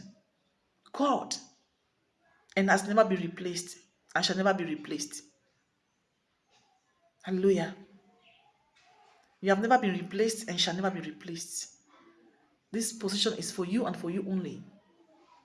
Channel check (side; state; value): both; identical; correlation 1.00